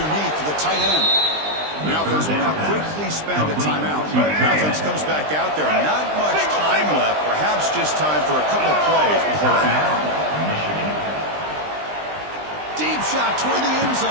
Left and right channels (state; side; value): late; left; 20 ms